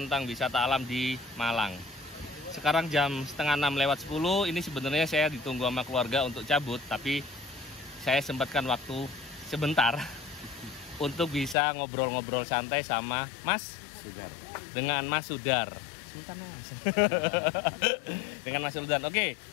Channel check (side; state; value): right; drops out; at 11.6 s